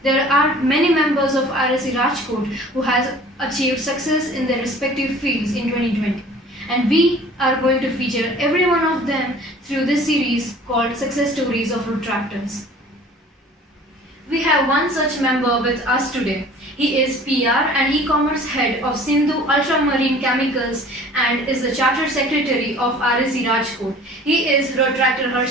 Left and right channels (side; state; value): both; normal; correlation 0.47